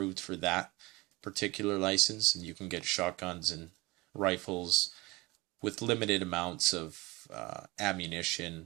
for that particular license, and you can get shotguns and rifles with limited amounts of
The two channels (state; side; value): quieter; left; 22.7 dB